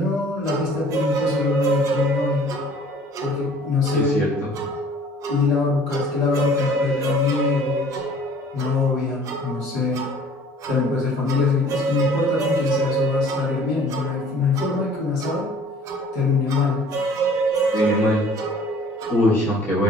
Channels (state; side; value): normal; both; correlation 0.51